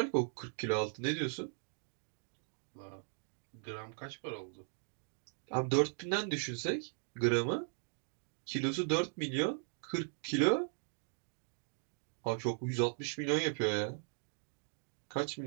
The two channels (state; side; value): silent; left; 52 dB below the other